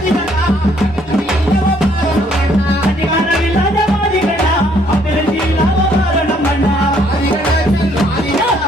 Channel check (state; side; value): normal; both; correlation 0.66